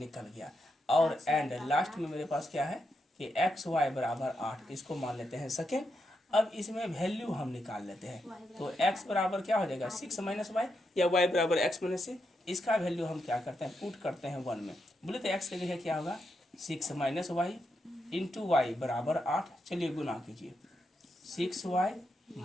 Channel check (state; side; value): normal; both; correlation 0.83